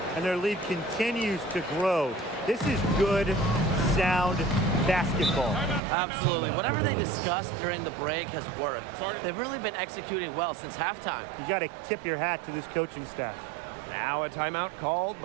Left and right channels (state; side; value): drops out; left; at 5.8 s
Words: And their lead continues to grow. This is good, sound basketball. Absolutely. Whatever they discussed during the break has worked. They've really been executing well since halftime. You got to tip your hat to this coaching staff. Now a timeout called